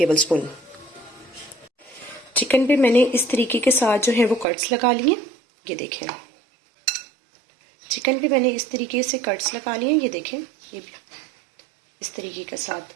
चिकन पे मैंने इस तरीके के साथ जो है वो कट्स लगा लिए। ये देखें, चिकन पे मैंने इस तरीके से कट्स लगा लिए। ये देखें, ये भी इस तरीके के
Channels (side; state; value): left; drops out; at 4.5 s